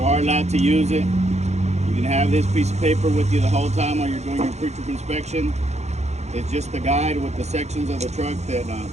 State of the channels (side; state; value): left; late; 0.32 ms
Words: are allowed to use it. You can have this piece of paper with you the whole time while you're doing your pre-trip inspection. It's just the guide with the sections of the truck that